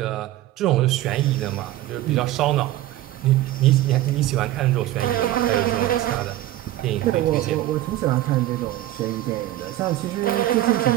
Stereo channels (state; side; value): quieter; left; 14.7 dB